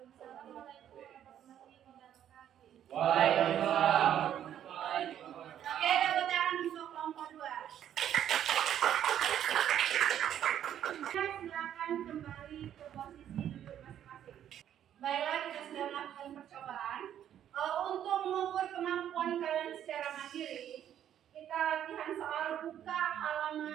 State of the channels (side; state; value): left; quieter; 10.4 dB